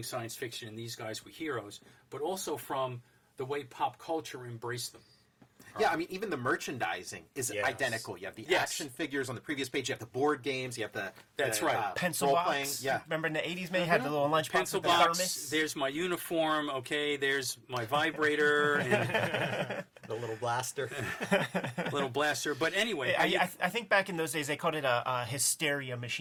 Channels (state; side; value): identical; both; correlation 1.00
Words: science fiction and these guys were heroes, but also from the way pop culture embraced them. Yeah, I mean, even the merchandising is Yes. identical. You have the Yes. action figures on the previous page. You have the board games. You have the That's right. pencil role box. playing. Yeah. Remember in the 80s, man, you had the little lunchbox Pencil with the box, thermos? there's my uniform, okay, there's my vibrator and The little blaster. little blaster. But anyway, I think back in those days they called it a hysteria